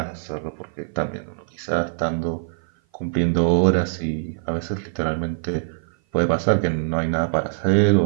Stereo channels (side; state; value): left; silent; 56 dB below the other